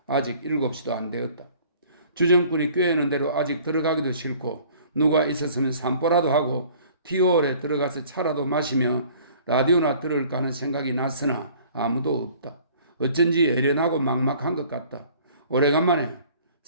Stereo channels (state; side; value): inverted; both; correlation -0.52